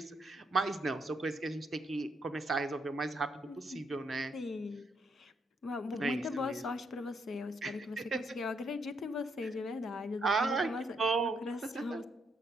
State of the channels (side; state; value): both; normal; correlation 0.75